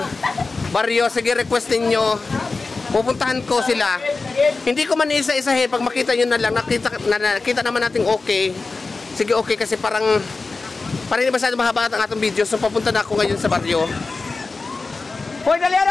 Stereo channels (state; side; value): quieter; right; 3.9 dB